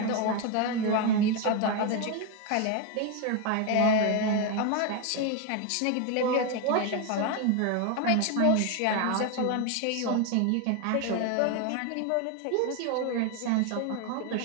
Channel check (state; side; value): different; both; correlation 0.01